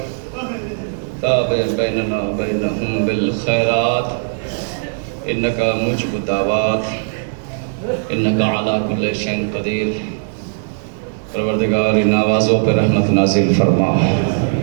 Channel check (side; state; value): left; silent; digital silence